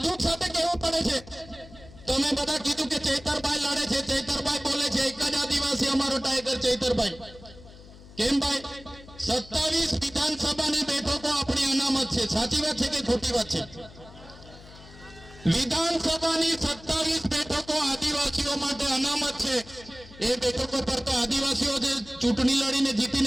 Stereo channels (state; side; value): noise; left; hum, 20 dB below the sound